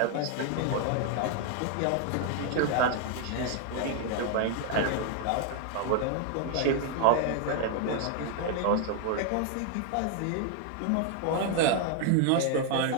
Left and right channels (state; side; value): different; both; correlation 0.00